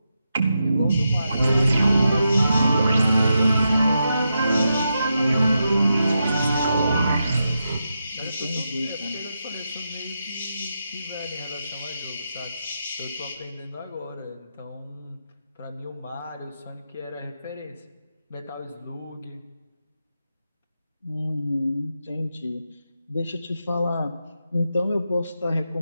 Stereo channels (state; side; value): inverted; both; correlation -0.86